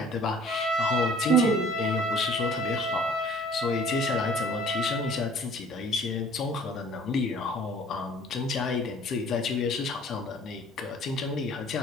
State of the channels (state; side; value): normal; both; correlation 0.52